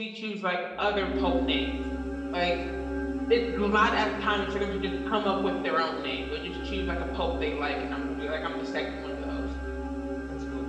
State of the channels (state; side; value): identical; both; correlation 1.00